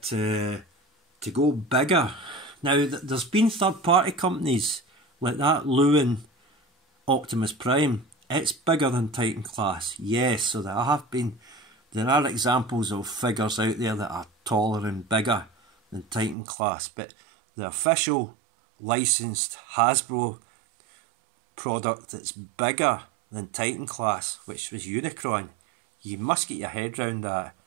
to go bigger. Now, there's been third-party companies like that Lewin Optimus Prime. It's bigger than Titan class, yes. So there are examples of figures out there that are taller and bigger than Titan class, but the official licensed Hasbro product that's bigger than Titan class, which was Unicron, you must get your head round that.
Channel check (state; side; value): drops out; left; at 16.4 s